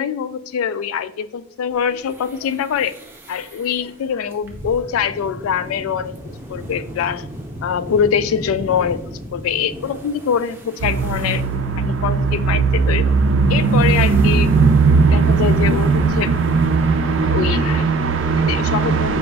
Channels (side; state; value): both; normal; correlation 0.39